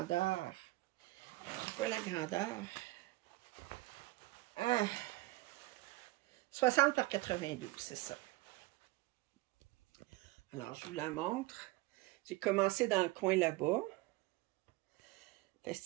C'est quoi la grandeur? 60 par 92, c'est ça. Alors, je vous la montre. J'ai commencé dans le coin là-bas.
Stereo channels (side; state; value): left; quieter; 20.1 dB